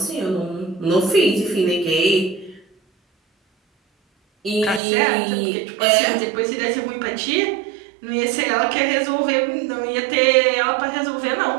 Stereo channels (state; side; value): drops out; left; at 4.8 s